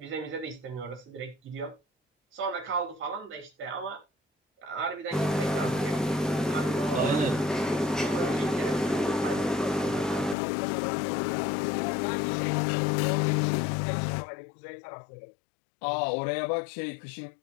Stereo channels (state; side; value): drops out; right; at 10.4 s